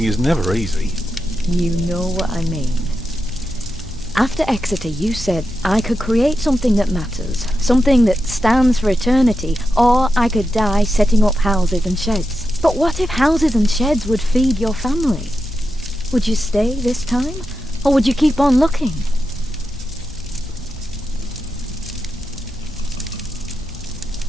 is never easy. You know what I mean. After Exeter, you said I could create something that matters, something that stands for eternity, or I could die setting up houses and sheds. But what if houses and sheds would feed your family? Would you stay this time, or would you keep on looking?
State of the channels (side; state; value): both; normal; correlation 0.88